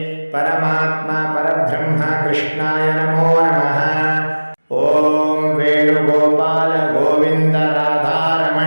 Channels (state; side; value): inverted; both; correlation -1.00